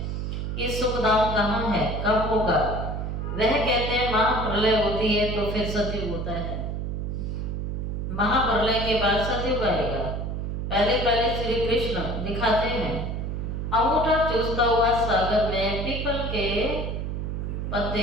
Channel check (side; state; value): right; noise; hum, 3 dB below the sound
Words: कि सुख धाम कहाँ है, कब होगा? वह कहते हैं महाप्रलय होती है तो फिर सतयुग होता है। महाप्रलय के बाद सतयुग आएगा। पहले श्री कृष्ण दिखाते हैं अंगूठा चूसता हुआ सागर में पीपल के